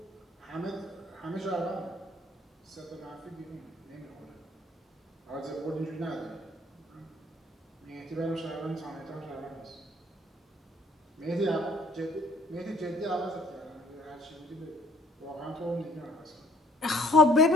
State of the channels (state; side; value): normal; both; correlation 0.60